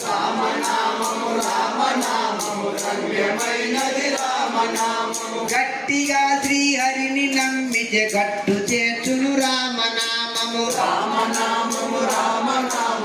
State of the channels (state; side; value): identical; both; correlation 1.00